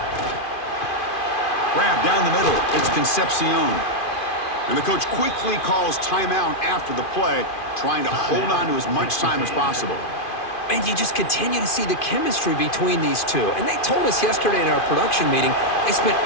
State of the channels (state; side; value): late; right; 2.5 ms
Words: Grab down the middle. It's Concepcion. And the coach quickly calls timeout after the play, trying to hold on to as much time as possible. And you just continue to see the chemistry between these two. And they told us yesterday in our production meeting, they spent